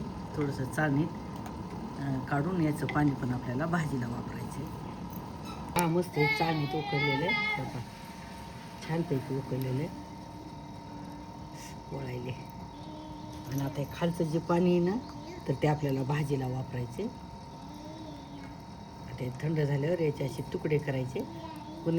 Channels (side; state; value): both; identical; correlation 1.00